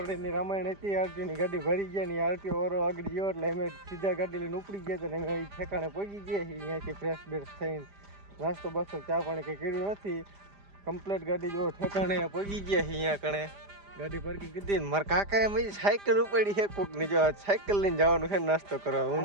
રામાયણ હતી આરટીઓની ગાડી ભરી ગયા ને આરટીઓ વાળો આગળ ગયો એટલે અમે સીધા ગાડી લઈને ઉપડી ગયા હતા ને અમે ઠેકાણે પહોંચી ગયા છીએ અહીંયાથી ફ્રેશ બેશ થઈને નાસ્તો બાસ્તો ચા પાણી કંઈ કર્યું નથી કમ્પ્લેટ ગાડી જો ઠેકાણે પહોંચી ગયા છીએ અહીંયા કણે ગાડી પાર્કિંગ કીધી ને મારા કાકાએ મેં સાયકલ ઉપાડી છે કોકની જો સાયકલ લઈને જવાનું છે નાસ્તો કરવા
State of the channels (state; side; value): late; left; 5.0 ms